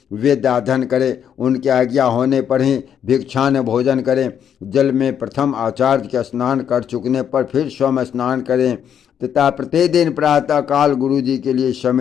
वेदाध्ययन करें। उनके आज्ञा होने पर ही भिक्षान भोजन करें। जल में प्रथम आचार्य के स्नान कर चुकने पर फिर स्वयं स्नान करें तथा प्रतिदिन प्रातः काल गुरु जी के लिए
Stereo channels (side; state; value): right; quieter; 8.7 dB